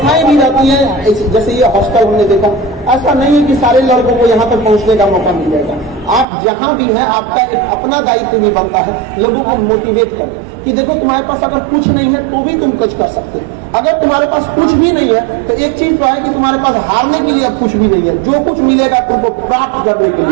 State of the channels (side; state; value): left; drops out; at 6.2 s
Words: भी रहती हैं, जैसे ये हॉस्टल हमने देखा। ऐसा नहीं है कि सारे लड़कों को यहाँ तक पहुँचने का मौका मिल जाएगा। आप जहाँ भी हैं, आपका एक अपना दायित्व भी बनता है लोगों को मोटिवेट कर कि देखो तुम्हारे पास अगर कुछ नहीं है तो भी तुम कुछ कर सकते हो। अगर तुम्हारे पास कुछ भी नहीं है तो एक चीज तो है कि तुम्हारे पास हारने के लिए कुछ भी नहीं है। जो कुछ मिलेगा तुमको प्राप्त करने के